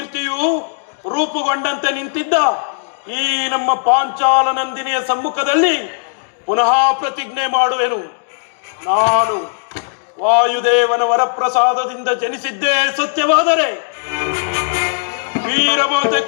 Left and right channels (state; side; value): silent; right; digital silence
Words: ರೂಪುಗೊಂಡಂತೆ ನಿಂತಿದ್ದ ಈ ನಮ್ಮ ಪಾಂಚಾಲ ನಂದಿನಿಯ ಸಮ್ಮುಖದಲ್ಲಿ ಪುನಃ ಪ್ರತಿಜ್ಞೆ ಮಾಡುವೆನು. ನಾನು ವಾಯುದೇವನ ವರಪ್ರಸಾದದಿಂದ ಜನಿಸಿದ್ದೇ ಸತ್ಯವಾದರೆ, ವೀರಮಾತೆ